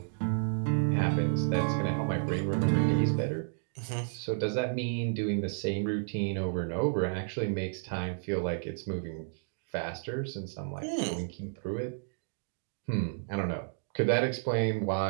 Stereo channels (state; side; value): silent; left; digital silence